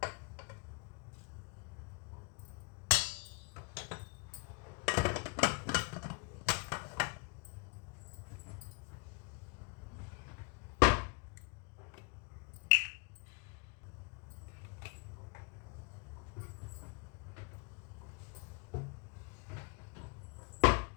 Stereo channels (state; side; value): quieter; right; 32.4 dB